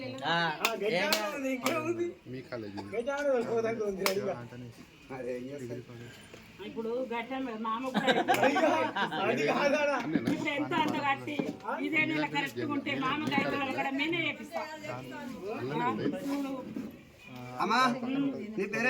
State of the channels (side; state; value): both; identical; correlation 1.00